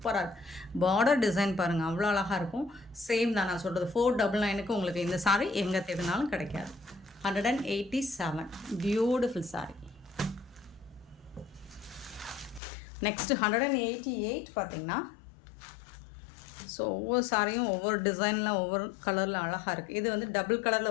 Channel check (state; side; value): drops out; right; at 12.6 s